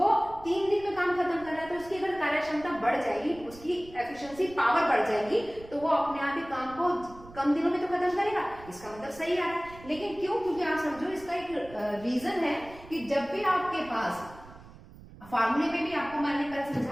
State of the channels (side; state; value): right; noise; rumble, 19 dB below the sound